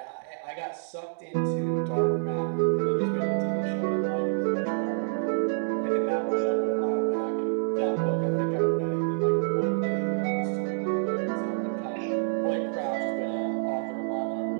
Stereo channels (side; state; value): left; silent; digital silence